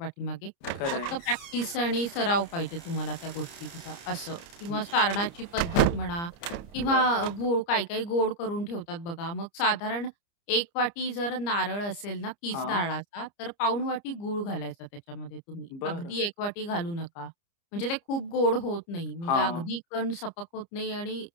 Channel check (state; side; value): late; right; 29 ms